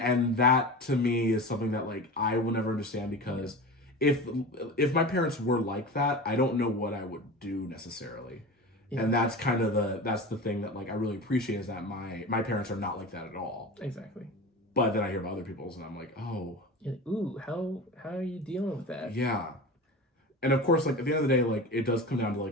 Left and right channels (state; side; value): normal; both; correlation 0.31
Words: that to me is something that like I will never understand, because if my parents were like that, I don't know what I would do necessarily. Yeah. And that's kind of the thing that like I really appreciate, is that my parents are not like that at all. Exactly. But then I hear about other people's and I'm like, oh. Ooh, how are you dealing with that? Yeah. And of course, like at the end of the day, like it does come down to